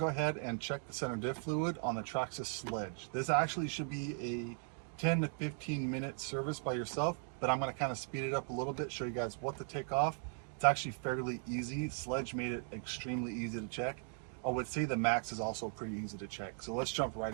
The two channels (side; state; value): left; silent; 52 dB below the other